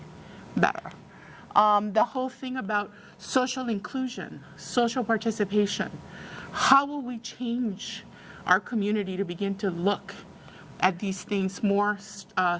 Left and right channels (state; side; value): identical; both; correlation 1.00